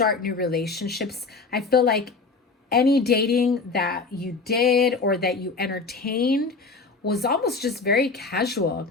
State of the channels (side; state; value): right; quieter; 4.2 dB